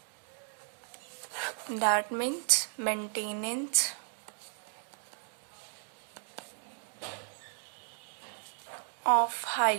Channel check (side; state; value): left; silent; 55 dB below the other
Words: That means maintenance of